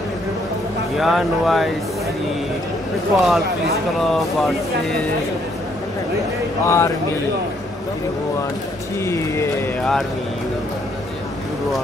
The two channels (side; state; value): both; normal; correlation 0.69